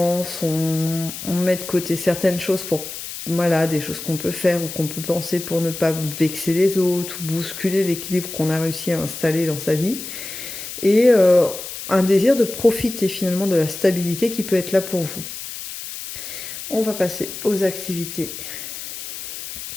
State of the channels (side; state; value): left; noise; hiss, 9 dB below the sound